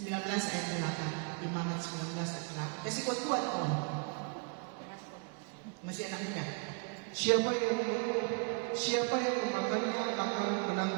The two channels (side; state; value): left; quieter; 36.2 dB